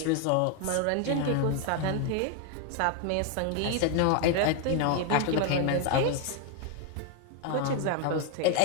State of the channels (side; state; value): both; different; correlation 0.01